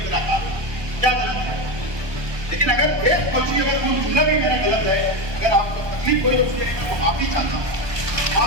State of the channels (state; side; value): late; left; 1.2 ms